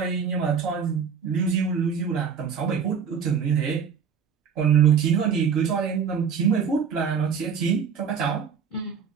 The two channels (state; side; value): quieter; left; 6.7 dB